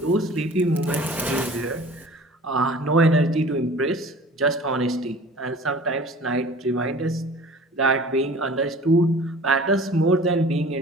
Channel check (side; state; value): both; normal; correlation 0.44